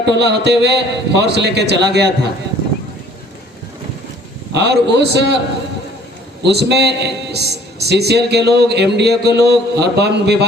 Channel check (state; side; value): normal; both; correlation 0.55